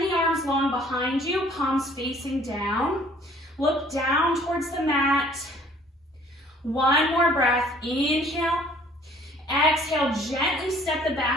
the arms long behind you, palms facing down. Look down towards the mat. One more breath, inhale. Exhale, gently step the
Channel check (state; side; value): normal; both; correlation 0.56